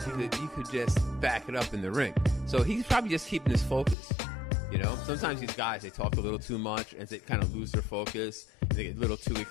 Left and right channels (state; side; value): drops out; right; at 4.0 s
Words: You could just back it up in the ring. So he's probably just keeping his focus. Sometimes these guys, they talk a little too much and they kind of lose their focus. And they get a little too